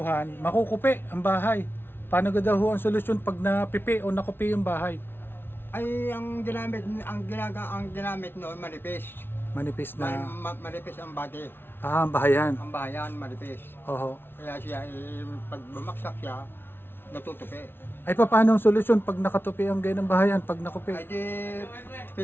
makukupi ang bahay. Paano ga daw ho ang solusyon pag napipi o nakupi yung bahay? Ay, ang ginamit noon, manipis. Manipis na, Manipis ang body. ang bahayan. Ang bahayan, manipis. Oho. Kaya siya, pag bumaksak siya, natutupi. Ay paano ang solusyon pag nakatupi ang ganyan ng bahayan, pag nakupi? Ay di,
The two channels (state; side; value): late; right; 0.11 ms